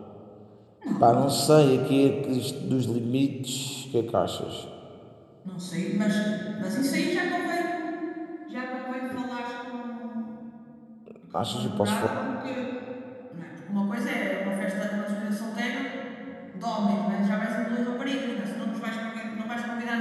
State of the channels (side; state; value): both; identical; correlation 1.00